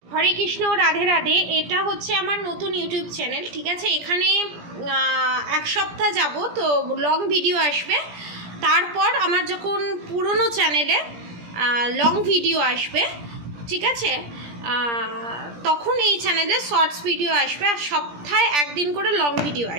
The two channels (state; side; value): late; left; 17 ms